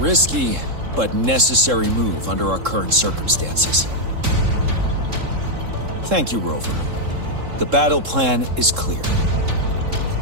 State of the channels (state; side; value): late; left; 3.7 ms